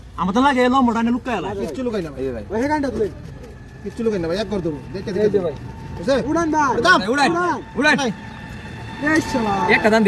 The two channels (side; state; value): both; identical; correlation 1.00